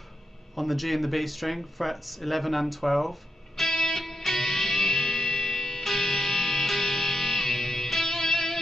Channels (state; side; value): normal; both; correlation 0.84